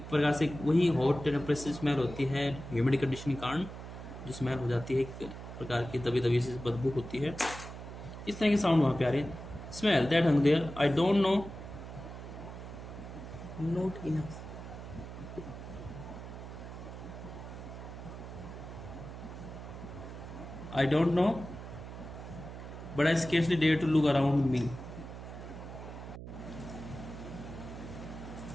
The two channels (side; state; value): right; noise; hum, 11 dB below the sound